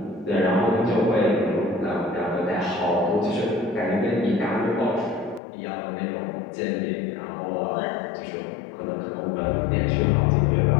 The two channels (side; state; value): right; drops out; at 5.4 s